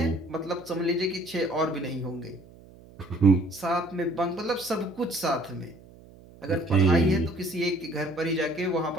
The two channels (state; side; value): noise; right; hum, 22 dB below the sound